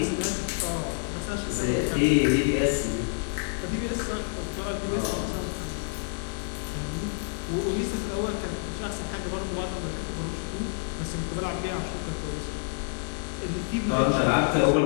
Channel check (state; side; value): silent; right; 59 dB below the other